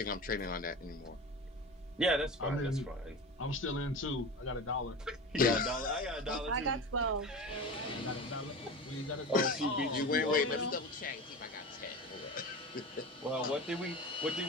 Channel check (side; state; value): both; normal; correlation 0.29